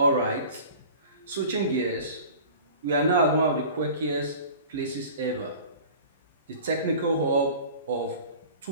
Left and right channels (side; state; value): both; inverted; correlation -0.41